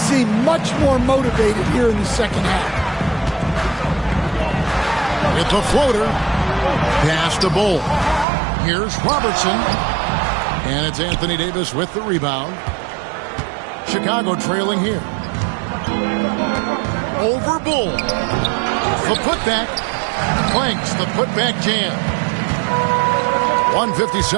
much more motivated here in the second half. It's a floater. Pass to Bull. Here's Robertson. And it's Anthony Davis with the rebound. Chicago trailing here. Over Bull. The putback. Clanks the putback jam.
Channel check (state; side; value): drops out; left; at 8.2 s